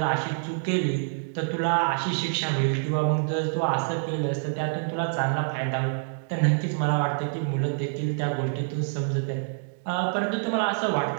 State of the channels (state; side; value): silent; left; digital silence